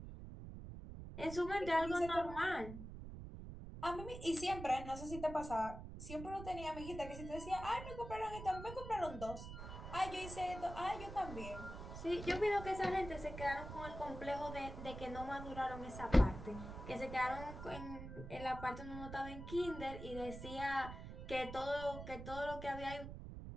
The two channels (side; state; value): right; noise; rumble, 10 dB below the sound